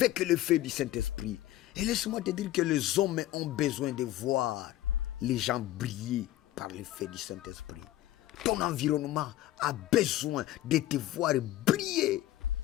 le feu du Saint-Esprit. Et laisse-moi te dire que les hommes ont besoin de voir les gens briller par le feu du Saint-Esprit. Ton environnement a besoin de te voir briller.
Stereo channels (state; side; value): quieter; right; 14.8 dB